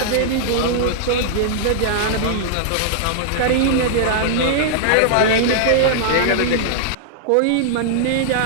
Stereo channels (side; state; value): both; different; correlation -0.01